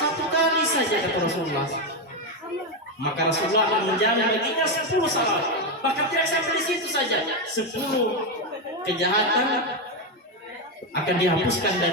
1 kali saja, kata Rasulullah, maka Rasulullah akan menjamin baginya 10 salawat. Bahkan tidak sampai di situ saja, 10 kejahatan akan dihapuskan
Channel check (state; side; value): normal; both; correlation 0.07